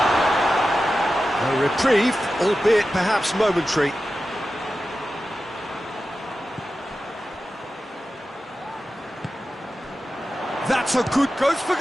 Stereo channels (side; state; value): both; normal; correlation 0.93